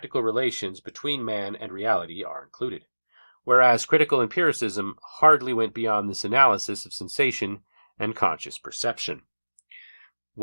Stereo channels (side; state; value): both; inverted; correlation -1.00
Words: relations between man and reality are included, whereas critical empiricism hardly went beyond this analysis of sensation and conscious perception.